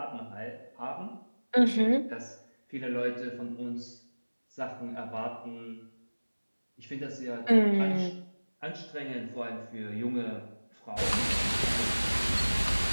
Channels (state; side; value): inverted; both; correlation -1.00